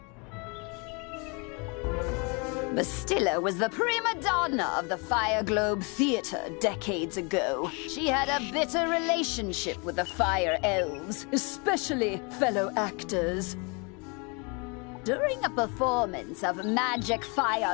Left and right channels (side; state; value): right; quieter; 32.0 dB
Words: Bastilla was the prima donna of the Fire Globe Theater decades ago. She had a bitter relationship with the Fire Elves, especially fellow actors. During a performance of magic fire